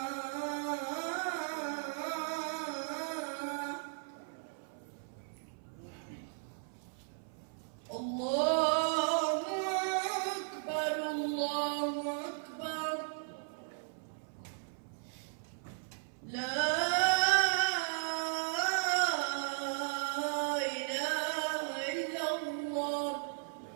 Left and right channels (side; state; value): left; silent; 54 dB below the other